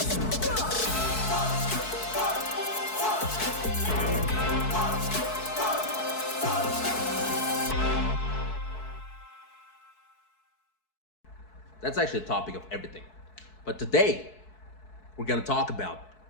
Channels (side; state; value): right; late; 4.6 ms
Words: That's actually the topic of everything. But today, we're gonna talk about